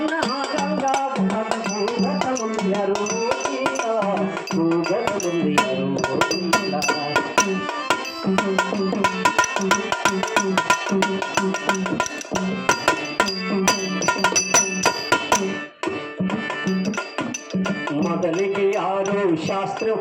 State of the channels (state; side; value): identical; both; correlation 1.00